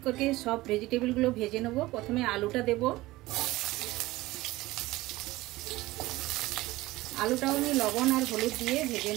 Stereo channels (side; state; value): left; quieter; 18.7 dB